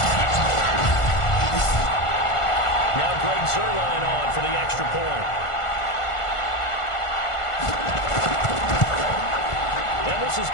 Zerline on for the extra point. And this is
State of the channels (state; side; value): late; right; 1.5 ms